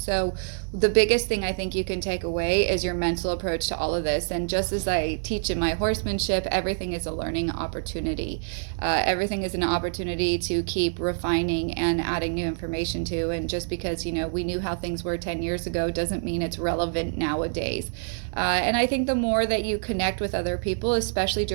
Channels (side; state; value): left; silent; digital silence